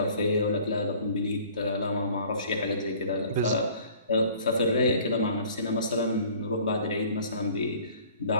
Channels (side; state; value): both; inverted; correlation -0.52